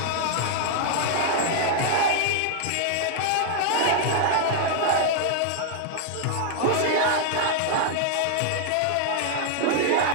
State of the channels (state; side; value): different; both; correlation 0.00